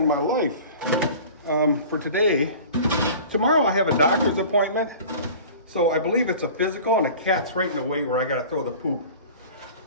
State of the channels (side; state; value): both; inverted; correlation -0.41